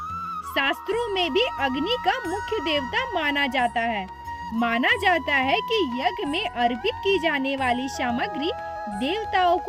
शास्त्रों में भी अग्नि का मुख्य देवता माना जाता है। माना जाता है कि यज्ञ में अर्पित की जाने वाली सामग्री देवताओं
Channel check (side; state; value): both; identical; correlation 1.00